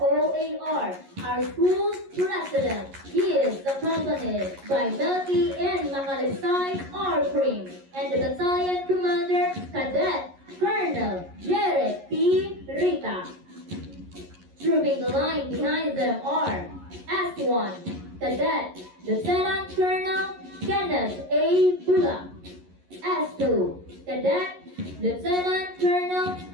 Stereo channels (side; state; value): left; late; 11 ms